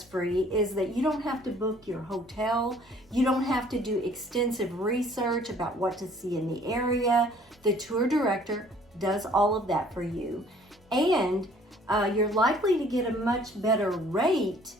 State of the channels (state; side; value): normal; both; correlation 0.56